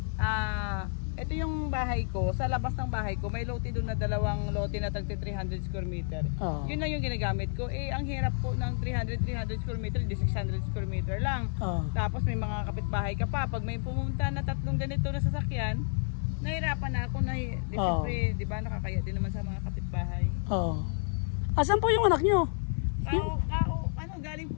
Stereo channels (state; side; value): silent; right; 58 dB below the other